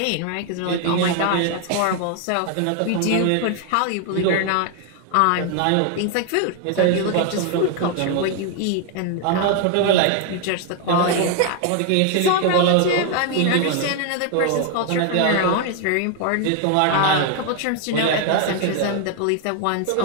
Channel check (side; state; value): both; different; correlation 0.00